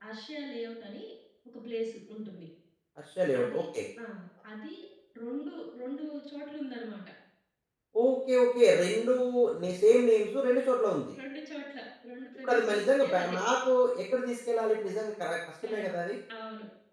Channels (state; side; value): identical; both; correlation 1.00